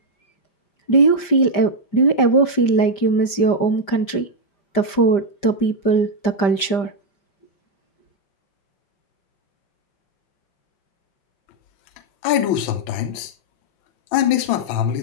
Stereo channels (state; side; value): late; right; 5.1 ms